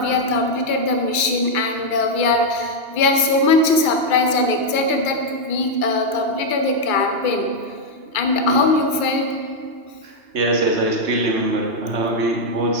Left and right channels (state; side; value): late; left; 2.3 ms